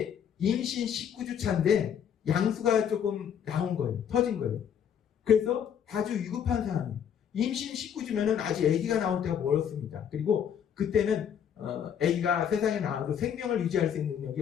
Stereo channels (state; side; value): quieter; right; 8.5 dB